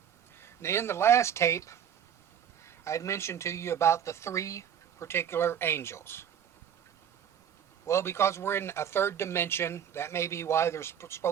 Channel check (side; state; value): left; quieter; 8.8 dB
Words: In the last tape, I'd mentioned to you about the three particular angels. Well, because we're in a third dimension, that may be why there's